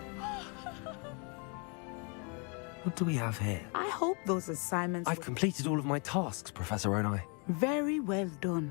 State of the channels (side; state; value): right; quieter; 34.6 dB